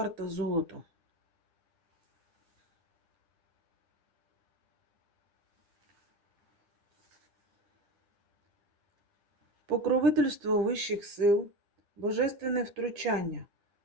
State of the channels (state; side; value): late; left; 9.9 ms